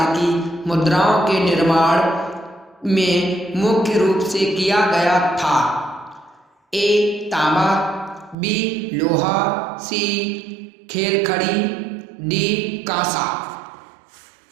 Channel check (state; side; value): drops out; left; at 8.3 s